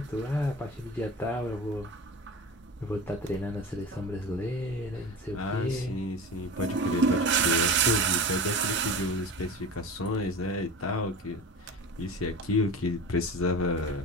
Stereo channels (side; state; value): both; normal; correlation 0.31